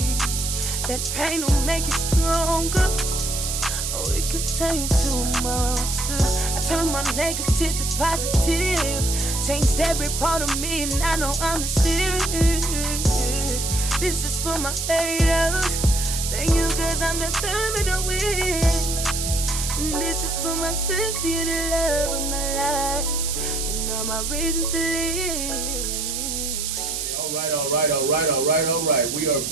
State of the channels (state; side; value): noise; right; hiss, 3 dB below the sound